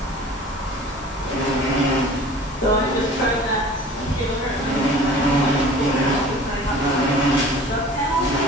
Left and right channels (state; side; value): normal; both; correlation 0.44